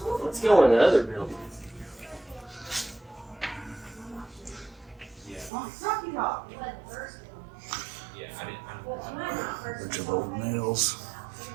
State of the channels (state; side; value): drops out; left; at 5.5 s